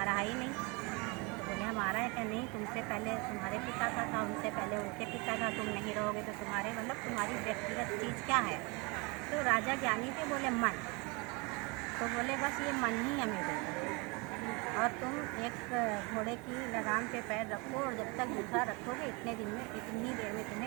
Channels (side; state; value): left; quieter; 28.6 dB